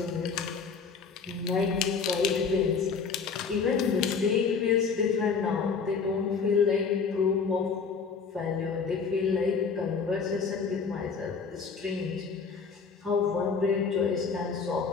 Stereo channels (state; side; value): quieter; right; 5.5 dB